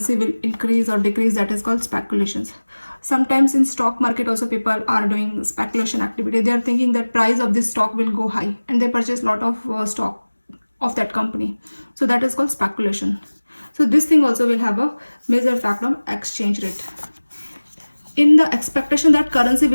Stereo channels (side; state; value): both; inverted; correlation -1.00